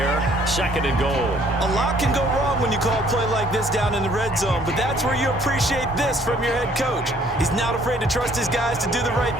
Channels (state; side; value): normal; both; correlation 0.60